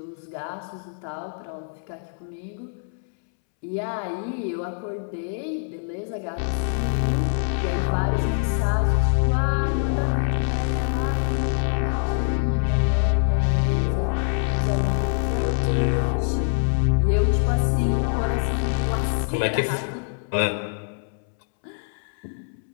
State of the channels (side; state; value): right; silent; 62 dB below the other